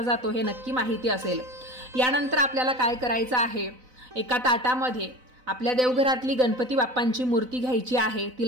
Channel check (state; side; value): late; left; 4.0 ms